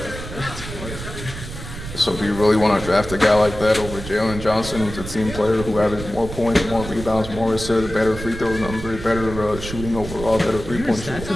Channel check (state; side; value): noise; right; rumble, 10 dB below the sound